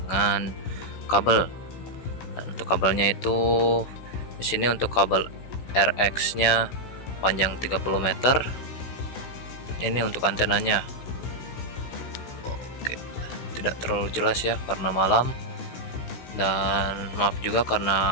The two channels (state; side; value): late; right; 16 ms